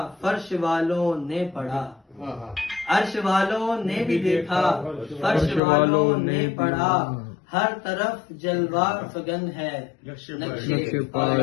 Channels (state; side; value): drops out; right; at 5.6 s